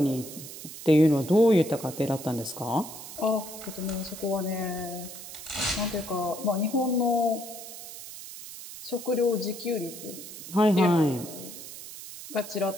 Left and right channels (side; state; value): right; noise; hiss, 12 dB below the sound